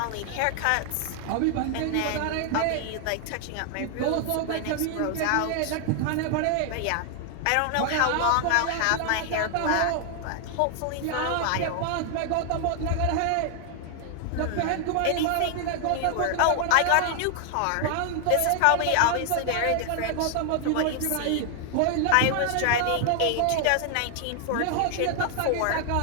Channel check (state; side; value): different; both; correlation 0.00